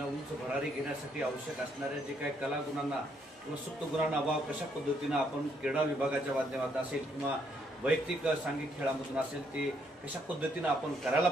उंच भरारी घेण्यासाठी आवश्यक असणाऱ्या जे काही कला गुणांना किंवा सुप्त गुणांना अभाव कशा पद्धतीनं आपण क्रीडा विभागाच्या माध्यमातून असेल किंवा वैयक्तिक सांघिक खेळामधून असेल ते कशा पद्धतीनं आपण करायला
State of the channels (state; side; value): normal; both; correlation 0.72